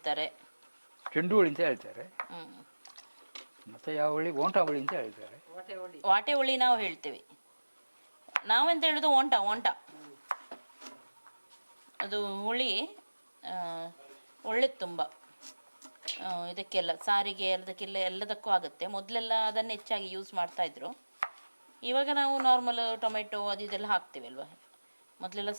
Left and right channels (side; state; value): both; inverted; correlation -1.00